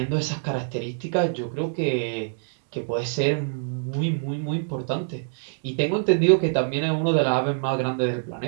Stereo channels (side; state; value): left; silent; digital silence